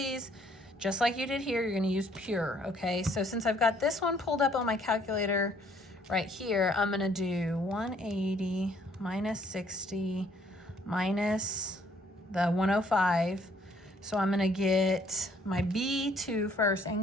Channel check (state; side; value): normal; both; correlation 0.63